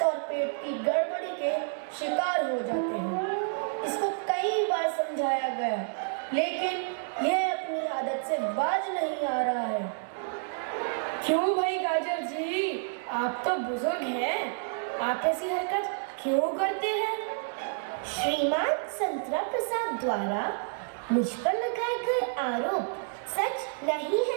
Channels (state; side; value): silent; left; digital silence